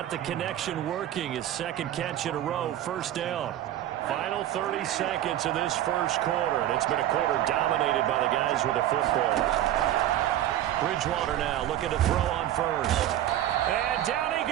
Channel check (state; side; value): quieter; left; 12.6 dB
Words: the connection working. His second catch in a row, first down. Final 30 seconds of this first quarter, and it's been a quarter dominated by the guys with the football. Bridgewater now looking to throw on first. And down he